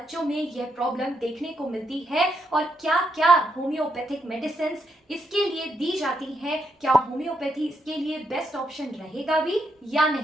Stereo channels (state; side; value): normal; both; correlation 0.79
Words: में यह प्रॉब्लम देखने को मिलती है, और क्या क्या होम्योपैथिक मेडिसिन इसके लिए दी जाती हैं। क्या होम्योपैथी इसके लिए बेस्ट ऑप्शन रहेगा भी या